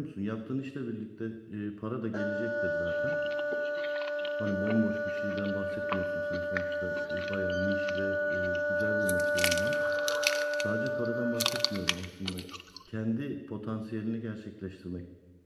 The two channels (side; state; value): both; identical; correlation 1.00